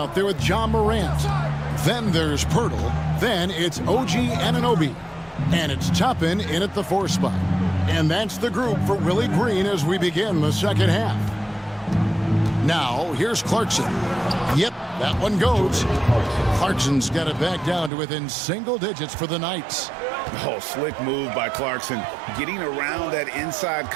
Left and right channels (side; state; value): left; drops out; at 17.9 s